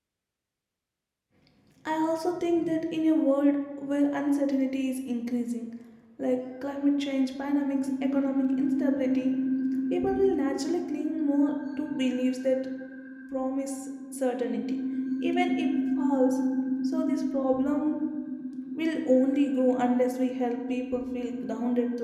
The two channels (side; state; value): both; identical; correlation 1.00